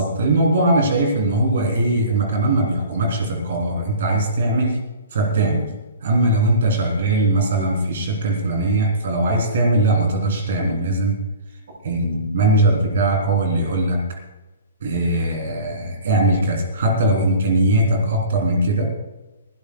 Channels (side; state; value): both; inverted; correlation -0.41